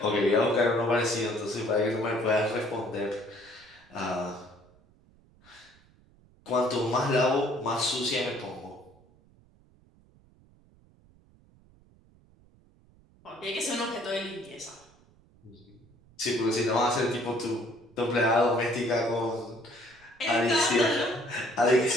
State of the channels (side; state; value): right; noise; rumble, 29 dB below the sound